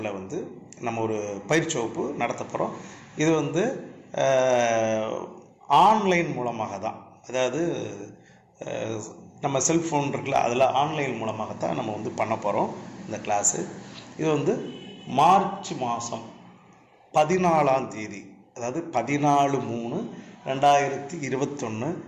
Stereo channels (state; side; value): identical; both; correlation 1.00